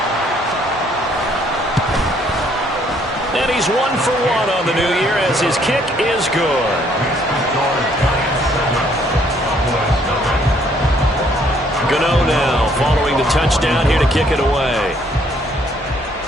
And he's 1 for 1 on the new year as his kick is good. Gano now following the touchdown here to kick it away.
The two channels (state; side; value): normal; both; correlation 0.65